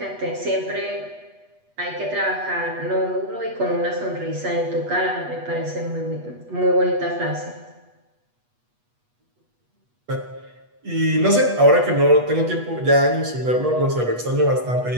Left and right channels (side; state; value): left; late; 8.3 ms